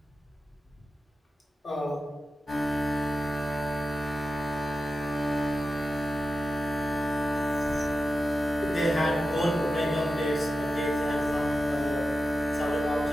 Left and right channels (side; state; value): both; normal; correlation 0.92